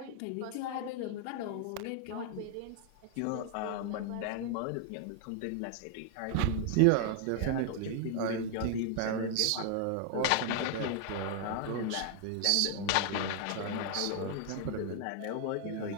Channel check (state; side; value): different; both; correlation 0.00